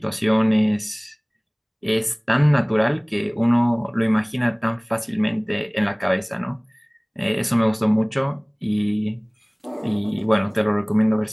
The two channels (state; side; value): identical; both; correlation 1.00